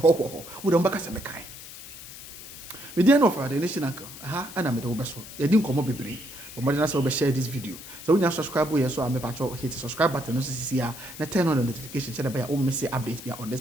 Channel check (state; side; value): noise; left; hiss, 14 dB below the sound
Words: wo dem baka se mekai me dey no for the nation uncle aha ana me dey wo beso ye di nkomo bebre but mo dey na say we share this video so when you subscribe here so am me patcho hit the subscribe button no sisi ya na turn on the notification so that by o miss updates be on